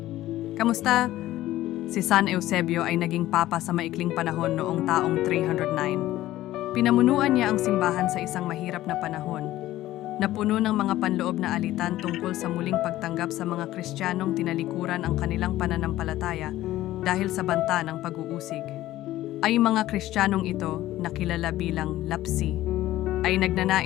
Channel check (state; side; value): quieter; right; 15.1 dB